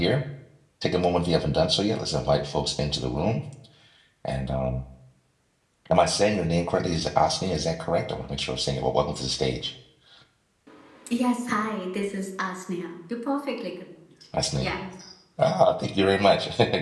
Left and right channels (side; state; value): both; identical; correlation 1.00